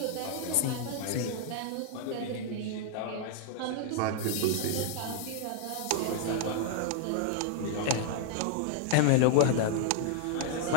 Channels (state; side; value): different; both; correlation 0.00